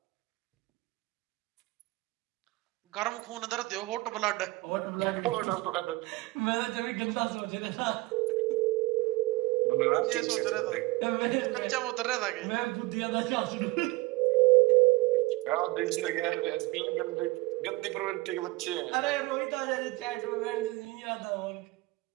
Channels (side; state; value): left; quieter; 21.0 dB